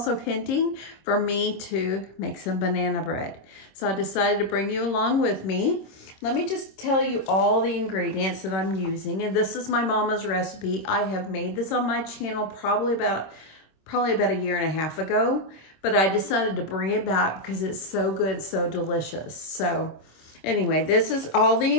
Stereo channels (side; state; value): right; late; 26 ms